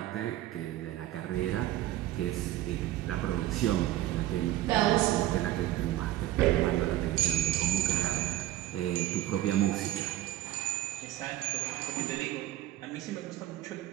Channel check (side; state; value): left; quieter; 14.7 dB